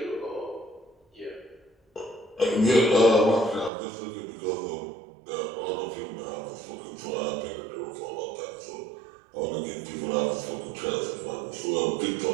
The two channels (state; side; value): drops out; left; at 3.7 s